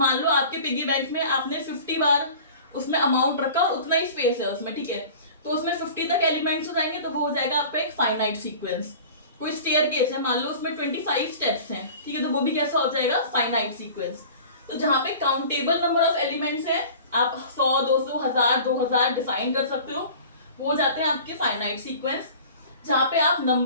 लो आपके पिगी बैंक में आपने 50 बार उसमें अमाउंट रखा, उतना ही स्पेस है उसमें, ठीक है। तो उसमें 50 तक एलिमेंट्स हो जाएंगे तो वो हो जाएगा आपका एक फाइनाइट सीक्वेंस। कोई स्टेयरकेस है, मान लो उसमें 25 स्टेप्स हैं, ठीक है, तो वो भी कैसा हो जाएगा? Finite sequence. तो जहां पे काउंटेबल नंबर ऑफ एलिमेंट्स है, आप 100, 200, 1000, 2000 डिफाइन कर सकते हो, वो हो जाते हैं आपके फाइनाइट सीक्वेंस। जहां पे आप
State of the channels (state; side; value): inverted; both; correlation -0.41